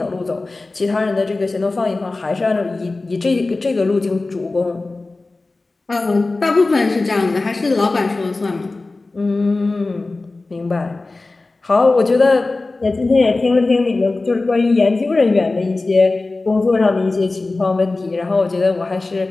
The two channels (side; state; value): right; quieter; 3.3 dB